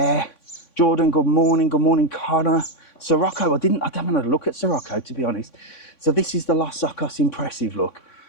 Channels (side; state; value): right; late; 3.6 ms